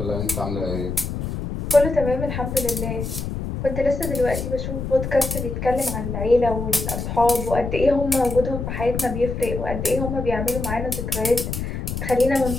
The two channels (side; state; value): left; noise; rumble, 4 dB below the sound